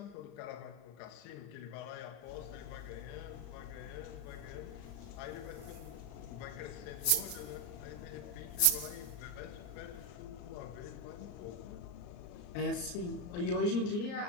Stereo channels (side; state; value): right; late; 34 ms